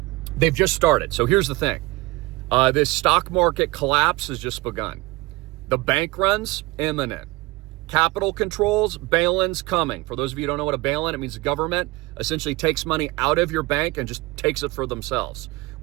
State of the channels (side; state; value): left; quieter; 21.7 dB